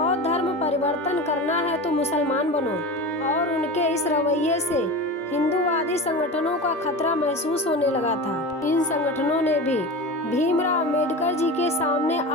धर्म परिवर्तन करना है तो मुसलमान बनो, और उनके इस रवैये से हिंदूवादी संगठनों का खतरा महसूस होने लगा था। इन संगठनों ने भी भीमराव अंबेडकर जी के सामने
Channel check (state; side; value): normal; both; correlation 0.28